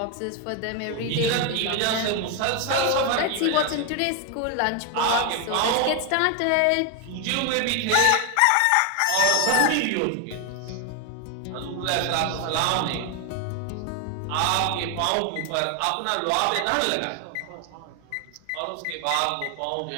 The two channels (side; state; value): both; different; correlation 0.01